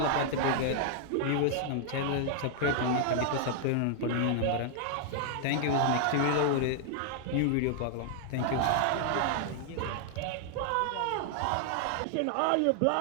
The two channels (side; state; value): both; different; correlation -0.01